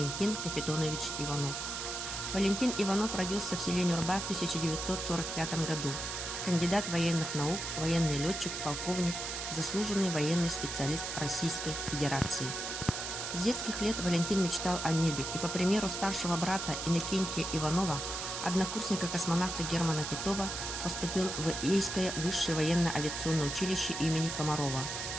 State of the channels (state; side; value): noise; right; hiss, 5 dB below the sound